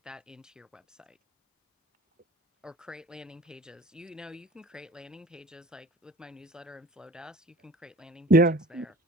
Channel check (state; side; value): normal; both; correlation 0.45